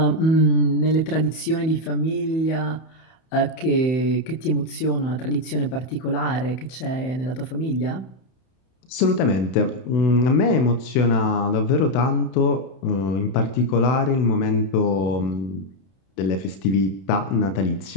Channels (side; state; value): right; late; 31 ms